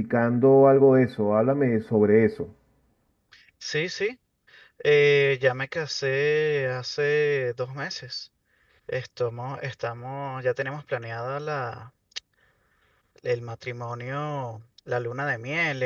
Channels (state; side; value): identical; both; correlation 1.00